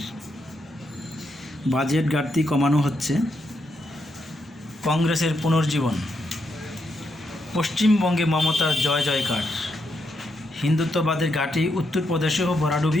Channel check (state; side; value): normal; both; correlation 0.81